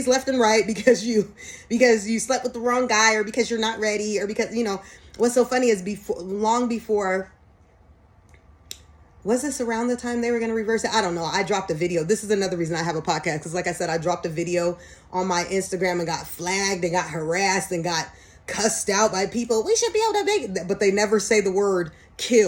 left and right because you slept with the wrong guy, or because you're not ready, or because, you know, what's so funny is long before, was this around the time they were going to reverse it? I don't know. I dropped a video. This is another reason I have a podcast, because like I said, I dropped a video on my Instagram and got flagged and got harassed and got cussed out by people. We should be able to make, but they never say the word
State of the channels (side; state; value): both; identical; correlation 1.00